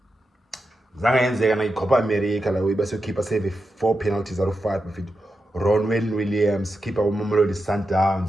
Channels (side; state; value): both; normal; correlation 0.89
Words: zange yenzeka na-Copa America lawe bese ukeeper save 4 penalties out of 5 bafethu. Ronwen Williams, keeper wamamelodi